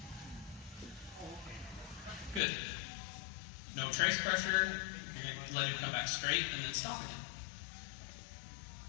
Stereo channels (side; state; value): right; drops out; at 2.4 s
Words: Good. No trace pressure. You're going to let him come back straight and then stop again.